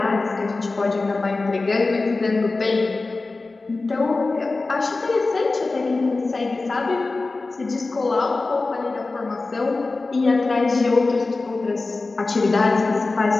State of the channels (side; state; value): right; quieter; 3.5 dB